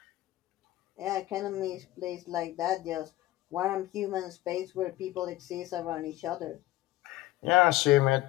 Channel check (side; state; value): right; quieter; 16.5 dB